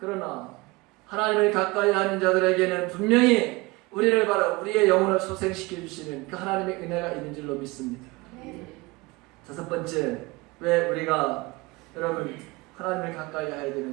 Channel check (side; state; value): left; quieter; 23.3 dB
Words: 하나님을 가까이 하는 자들에게는 분명히 우리를 바로 우리의 영혼을 소생시켜 주시는 그 하나님의 은혜가 있는 줄로 믿습니다. 다섯 번째, 왜 우리가 여러분 하나님을 가까이 해야